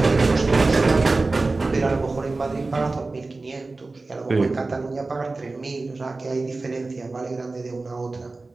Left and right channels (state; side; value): quieter; left; 3.5 dB